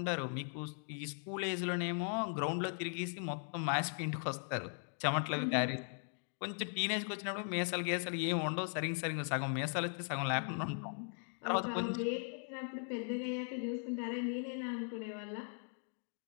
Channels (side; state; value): right; silent; 52 dB below the other